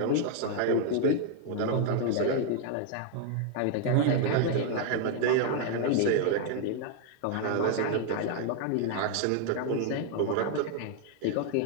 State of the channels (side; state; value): both; different; correlation 0.00